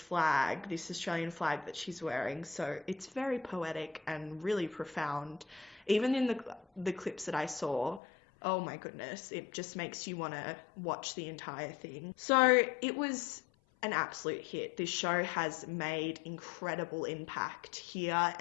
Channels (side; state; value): right; drops out; at 8.0 s